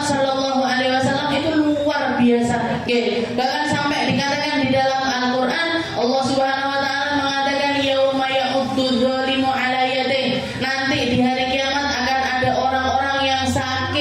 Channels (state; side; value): identical; both; correlation 1.00